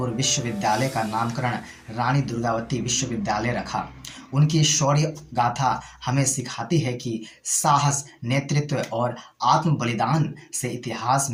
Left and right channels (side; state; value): both; identical; correlation 1.00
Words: विश्वविद्यालय का नामकरण रानी दुर्गावती विश्वविद्यालय रखा। उनकी शौर्य गाथा हमें सिखाती है कि साहस, नेतृत्व और आत्म बलिदान से इतिहास